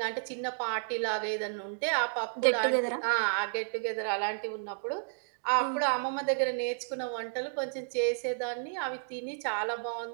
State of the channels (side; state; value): left; silent; digital silence